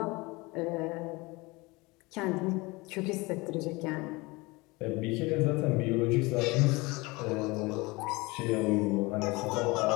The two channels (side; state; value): right; quieter; 24.0 dB